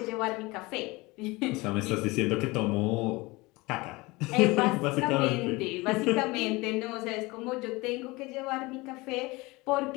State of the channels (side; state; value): right; quieter; 23.0 dB